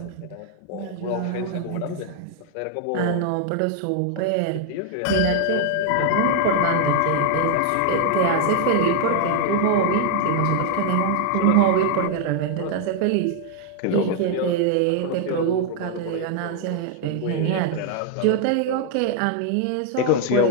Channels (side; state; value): both; different; correlation 0.00